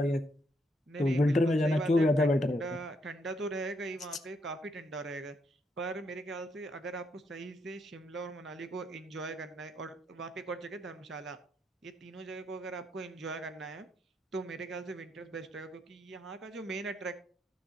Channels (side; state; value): both; normal; correlation 0.77